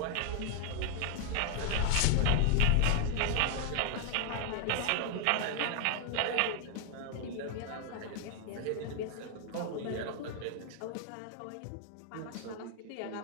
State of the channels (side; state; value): both; different; correlation 0.00